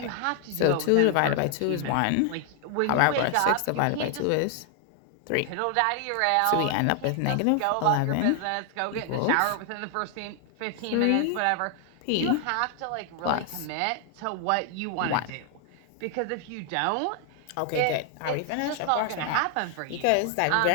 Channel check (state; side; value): different; both; correlation 0.00